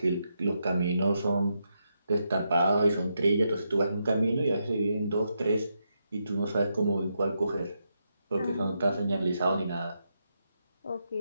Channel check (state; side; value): inverted; both; correlation -0.82